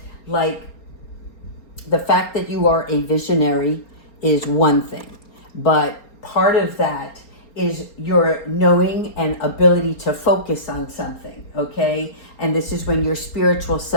like the fact that you are a visionary is one thing, but part of that is your knowing and ability to focus on something, okay? And this is when your spiritual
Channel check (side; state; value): right; late; 4.4 ms